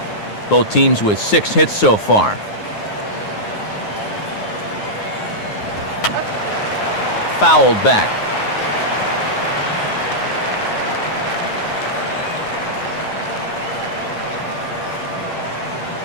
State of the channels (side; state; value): right; late; 9.5 ms